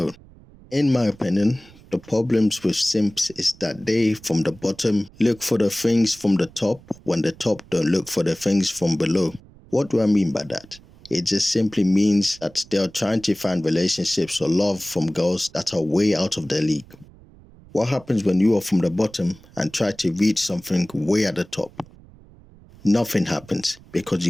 In my opinion, the problems with simps is that they, from the bottom, look for the things from the top when the top don't look for the things from below. What do I mean by that? It just simply means that they are trying to find relationships or love from girls that are way out of their league. What happens when you are from the bottom and try to reach something way at the top? Nothing happens because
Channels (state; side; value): noise; right; rumble, 24 dB below the sound